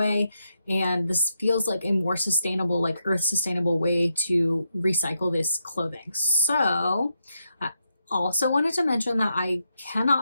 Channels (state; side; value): inverted; both; correlation -0.83